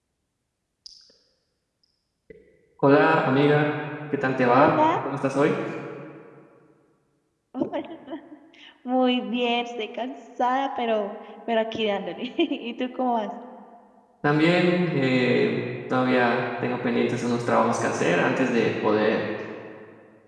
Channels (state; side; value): identical; both; correlation 1.00